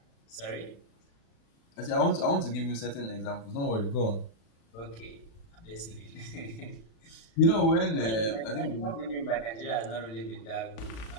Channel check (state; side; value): late; right; 36 ms